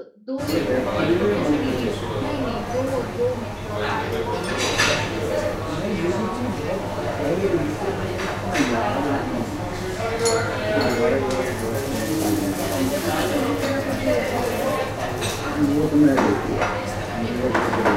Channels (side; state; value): both; identical; correlation 1.00